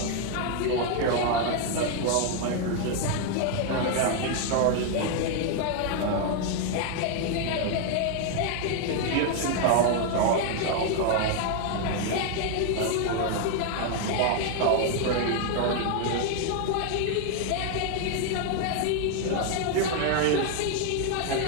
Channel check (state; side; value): different; both; correlation 0.00